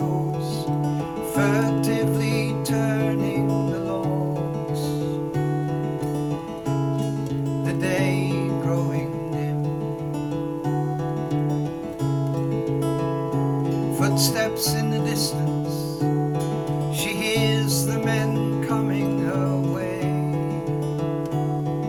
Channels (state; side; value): identical; both; correlation 1.00